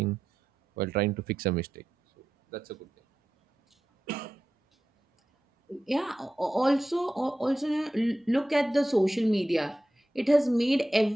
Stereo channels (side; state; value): both; normal; correlation 0.91